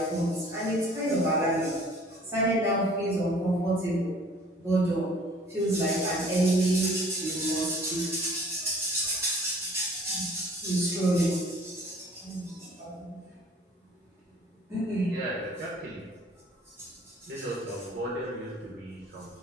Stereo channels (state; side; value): normal; both; correlation 0.52